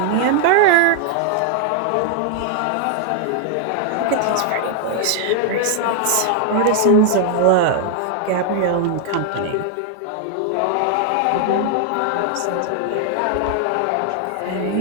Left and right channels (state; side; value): different; both; correlation 0.00